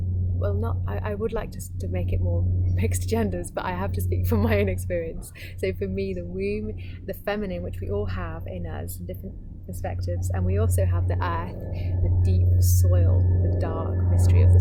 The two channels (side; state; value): both; identical; correlation 1.00